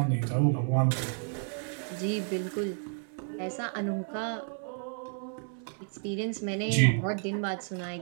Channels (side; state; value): left; silent; 57 dB below the other